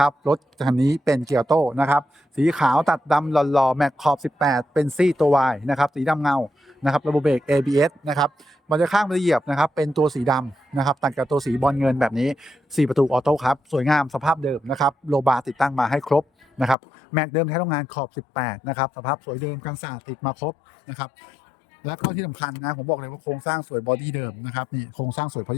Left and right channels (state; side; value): drops out; right; at 16.8 s